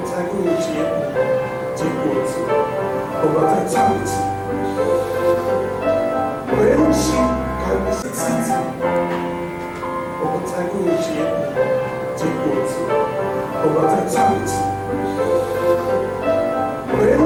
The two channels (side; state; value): both; identical; correlation 1.00